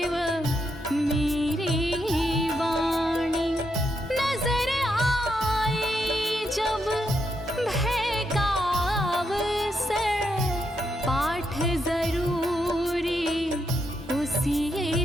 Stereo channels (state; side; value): normal; both; correlation 0.81